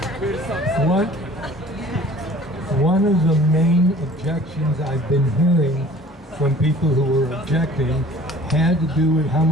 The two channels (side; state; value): both; normal; correlation 0.49